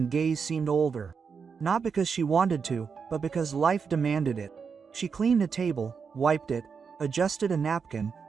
gaze seemed older. Not because she wanted to, but because life demanded it. She cleaned a table, wiped it, adjusted a napkin,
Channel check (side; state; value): left; quieter; 5.9 dB